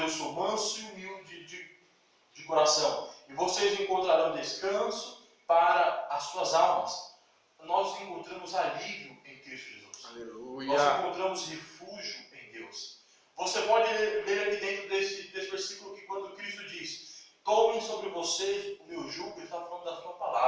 sou manso e humilde de coração, e vocês encontrarão descanso para as suas almas. Nós encontramos alívio em Cristo Jesus. Aleluia. Nós encontramos refúgio em Deus. Você pode ler aqui dentro desse versículo que quando Cristo diz: tomem sobre vocês o meu jugo, Ele está falando da sua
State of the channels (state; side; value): identical; both; correlation 1.00